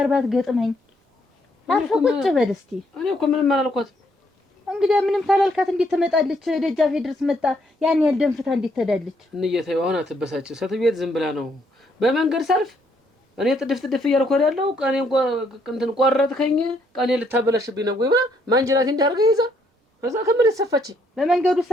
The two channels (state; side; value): normal; both; correlation 0.71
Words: ባትገጥመኝ አርፈህ ቁጭ በል እስኪ እኔ እኮ ምንም አላልኳትም እንግዲህ ምንም ታላልካት እንዴት ትመጣለች ደጃፌ ድረስ መጣ ያን ያህል ደንፍታ እንዴት ትሄዳለች እንየተው አሁን አትበሳጭ ሰትቤት ዝም ብላ ነው በመንገድ ሰልፍ እኔ ጥድፍ እያልኩ ያለው ቀኔ እንትን ቆረጥከኝ ቀኔ ልታበላሽብኝ ነው ወይ ብላ ማንጀራቴ እንዳርገ ይዛ ከዛ ከምን ተሰፋች በመንገዱ